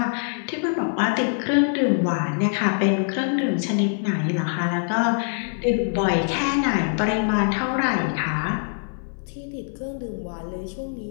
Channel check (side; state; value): right; silent; digital silence